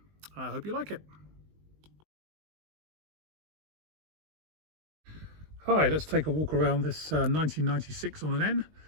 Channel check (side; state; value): left; late; 20 ms